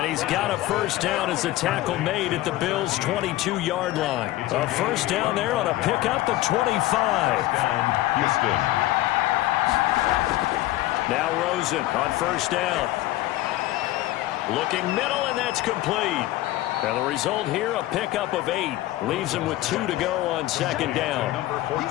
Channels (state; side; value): quieter; right; 16.4 dB